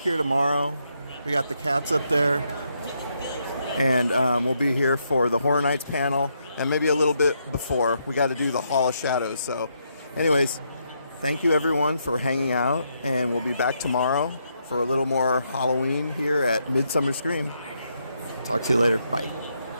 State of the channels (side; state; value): both; inverted; correlation -0.78